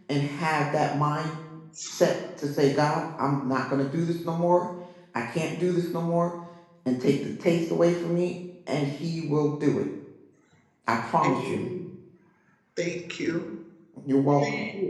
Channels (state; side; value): identical; both; correlation 1.00